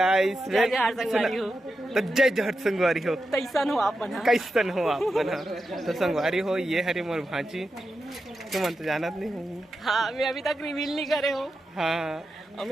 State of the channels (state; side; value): normal; both; correlation 0.89